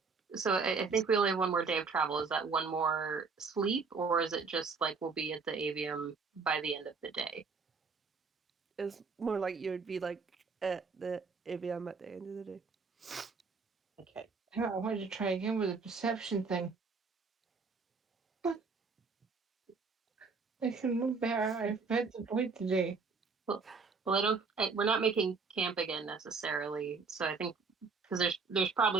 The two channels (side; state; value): left; quieter; 4.8 dB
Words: So I think we only have one more day of travel. Is that one more sleep, or is it just like we'll be at the avium by the end of the day? It's more like you would be like at the AVM at the end of the day. Okay. I wanted to try again with the perception thing. I can move better. I've had to wait today. Well, I don't. We're not making camp again necessarily. So I think because there's